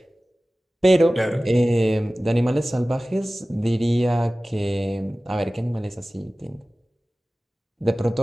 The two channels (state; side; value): normal; both; correlation 0.97